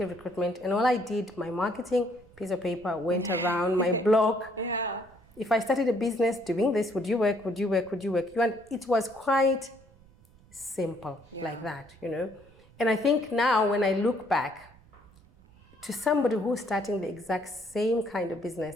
recruitment, and all I did, my marketing, piece of paper, went around my blog. Yeah. If I started a business doing this, would you work? Would you work? Would you work? And it was quite simple like that, you know. And I think now when I look back to somebody who's starting the exact same kind of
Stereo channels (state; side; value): noise; right; rumble, 27 dB below the sound